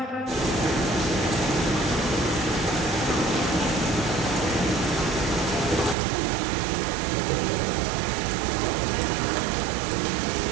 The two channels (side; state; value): left; drops out; at 6.0 s